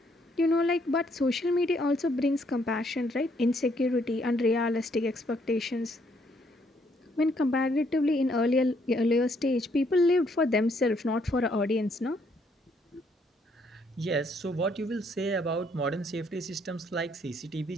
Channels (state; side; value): normal; both; correlation 0.70